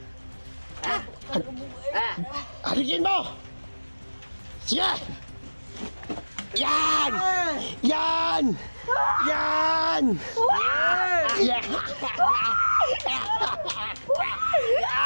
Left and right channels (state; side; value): inverted; both; correlation -1.00